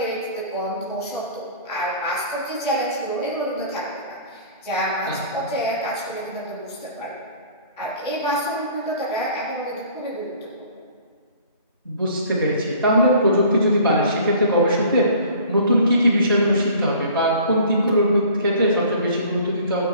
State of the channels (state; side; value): inverted; both; correlation -0.49